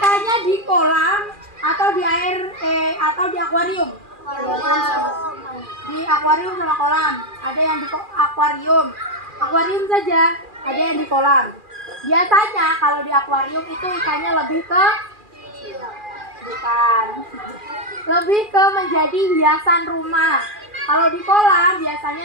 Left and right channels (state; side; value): late; left; 2.4 ms